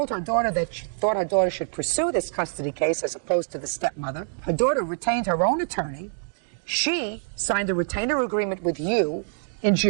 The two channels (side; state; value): left; silent; digital silence